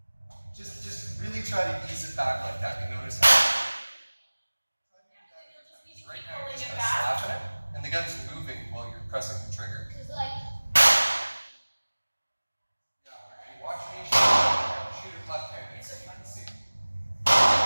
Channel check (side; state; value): both; inverted; correlation -1.00